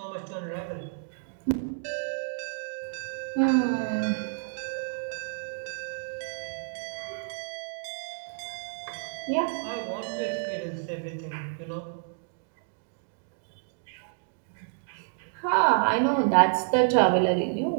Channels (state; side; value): silent; left; digital silence